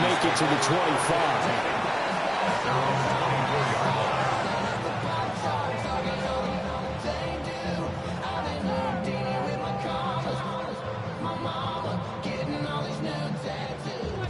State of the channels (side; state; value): both; identical; correlation 1.00